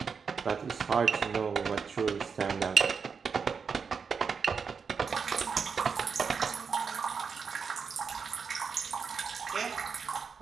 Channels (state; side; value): quieter; left; 5.8 dB